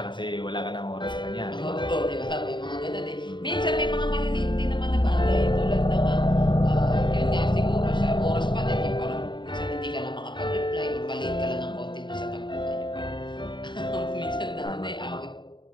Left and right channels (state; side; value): late; right; 0.23 ms